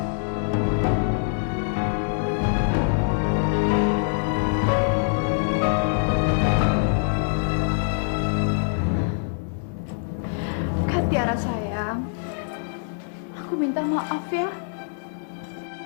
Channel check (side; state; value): right; silent; digital silence